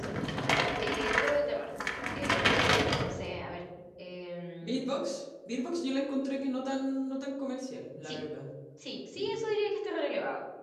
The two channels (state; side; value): identical; both; correlation 1.00